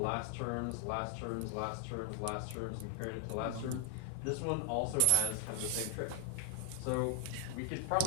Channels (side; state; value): both; different; correlation 0.00